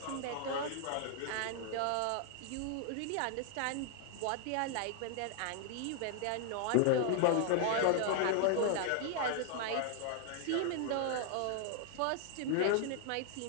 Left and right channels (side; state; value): both; different; correlation 0.00